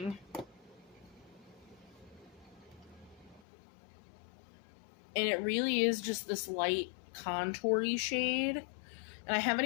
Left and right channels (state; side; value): drops out; right; at 3.4 s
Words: And it really is just this light contour-y shade. And I haven't